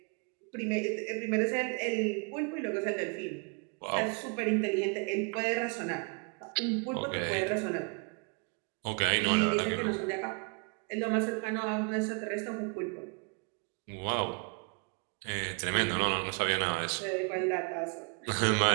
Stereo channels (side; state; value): left; quieter; 36.4 dB